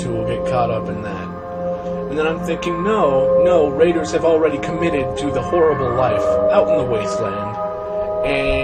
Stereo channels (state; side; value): identical; both; correlation 1.00